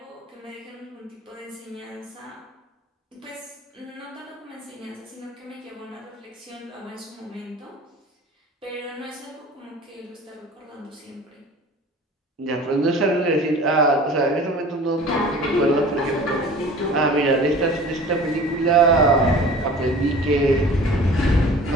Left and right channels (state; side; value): normal; both; correlation 0.43